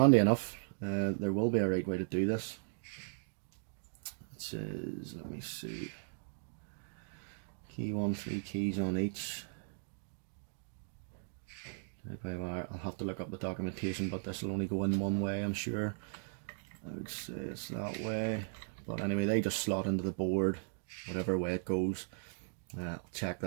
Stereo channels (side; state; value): left; silent; digital silence